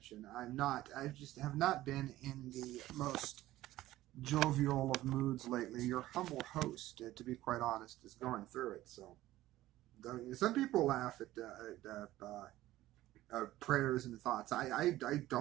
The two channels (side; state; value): left; quieter; 15.6 dB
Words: I just have not been in the most jovial of moods lately. Your humble host, to be quite honest, is going through it. So, some people laugh at prayers and thoughts. I